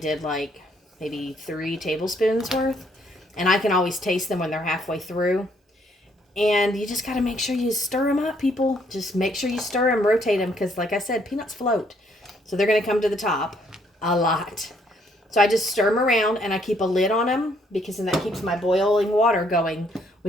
like maybe 3 tablespoons worth. And I can always taste them when they're halfway through. And you just got to make sure you stir them up, people. Just make sure you stir them, rotate them, because like I said, peanuts float. So they're going to come to the top a lot. So I just stir them around, and I keep a lid on them, because then that keeps my boiling water going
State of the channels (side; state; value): both; normal; correlation 0.68